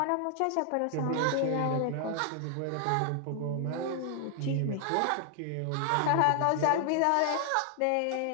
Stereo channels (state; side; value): different; both; correlation 0.00